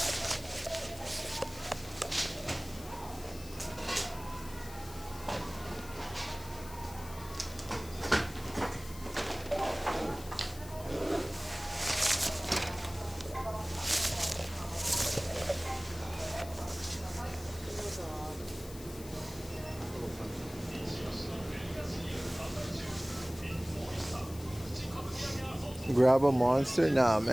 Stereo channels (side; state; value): left; noise; hiss, 16 dB below the sound